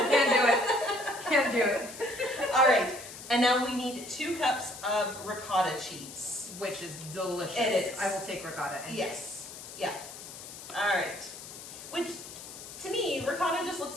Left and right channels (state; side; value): noise; left; hiss, 13 dB below the sound